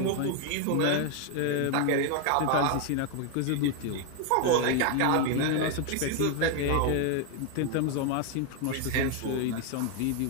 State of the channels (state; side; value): different; both; correlation 0.01